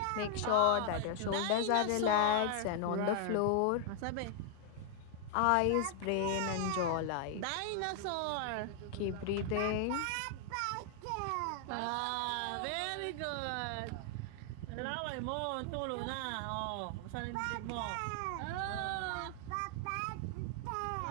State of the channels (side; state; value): both; different; correlation 0.00